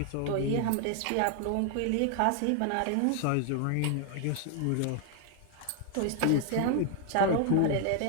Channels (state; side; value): different; both; correlation 0.00